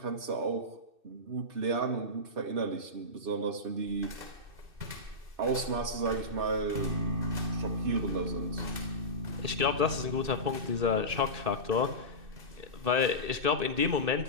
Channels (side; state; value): left; late; 2.6 ms